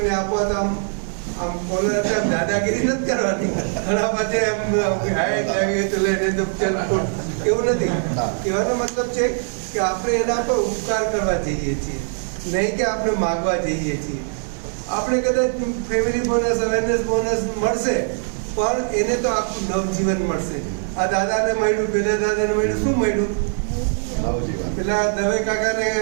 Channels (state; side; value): silent; left; 65 dB below the other